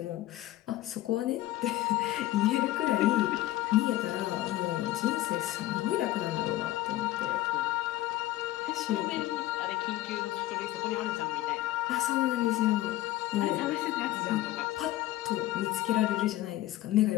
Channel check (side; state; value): right; quieter; 15.6 dB